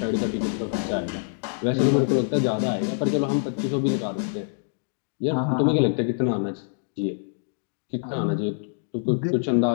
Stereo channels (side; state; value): right; silent; 59 dB below the other